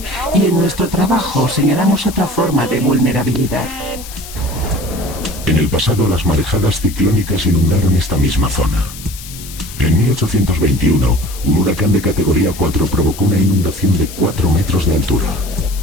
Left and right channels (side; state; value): left; noise; hiss, 14 dB below the sound